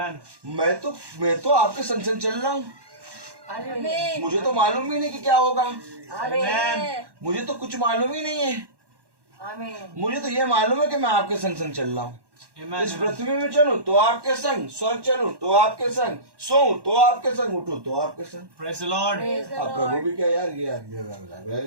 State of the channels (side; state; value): left; late; 1.1 ms